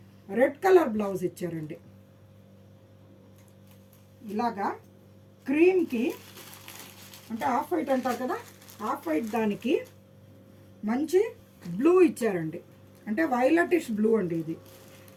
రెడ్ కలర్ బ్లౌజ్ ఇచ్చారండి. ఇలాగా క్రీమ్కి, అంటే ఆఫ్ వైట్ అంటారు కదా, ఆఫ్ వైట్ దానికి మంచి బ్లూ ఇచ్చారండి. అంటే వైలెటిష్ బ్లూ అండి ఇది.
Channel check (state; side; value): identical; both; correlation 1.00